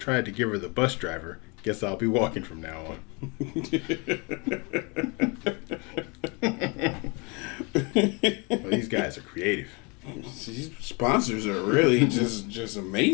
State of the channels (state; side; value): quieter; right; 30.2 dB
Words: to give her the bus driver. Guess I'll be walking from now on. Well, these guys are creative. These sponsors are really just